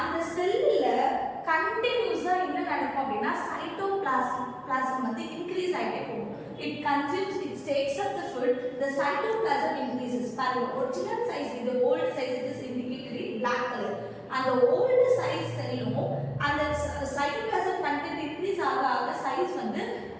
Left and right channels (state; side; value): identical; both; correlation 1.00